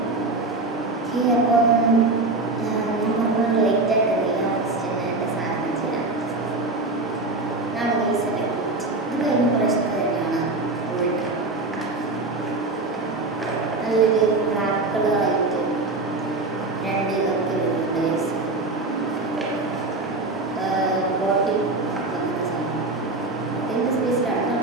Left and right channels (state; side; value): quieter; left; 3.2 dB